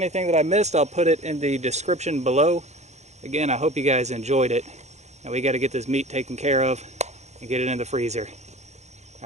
that I missed, I'll put it in the description below. Again, I hope you guys enjoyed it. And we got to get this meat taken care of and get it in the freezer.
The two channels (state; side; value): late; left; 0.33 ms